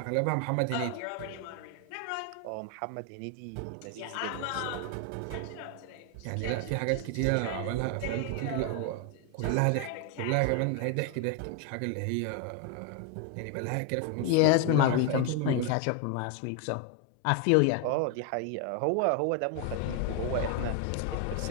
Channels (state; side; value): different; both; correlation 0.01